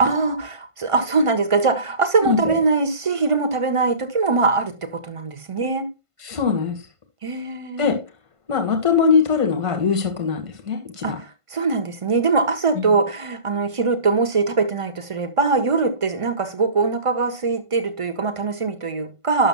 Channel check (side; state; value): left; late; 1.5 ms